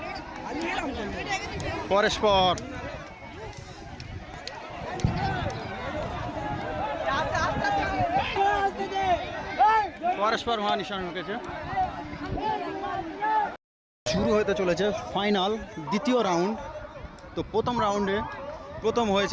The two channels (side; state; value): both; identical; correlation 1.00